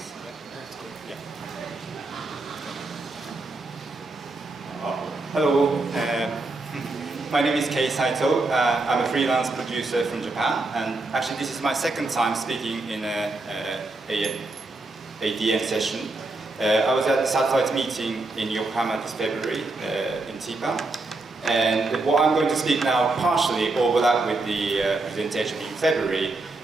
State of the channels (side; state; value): left; quieter; 3.2 dB